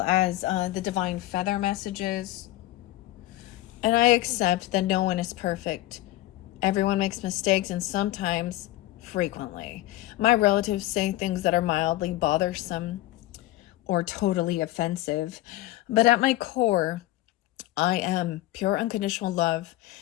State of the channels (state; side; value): quieter; right; 16.3 dB